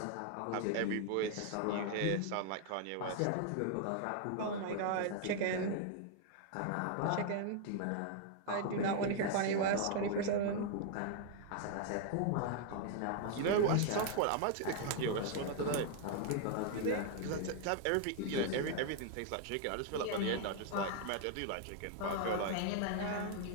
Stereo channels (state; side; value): different; both; correlation 0.00